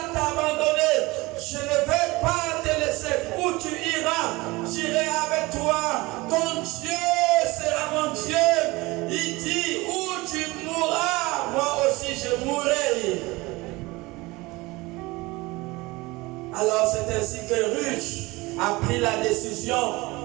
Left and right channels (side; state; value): left; quieter; 22.1 dB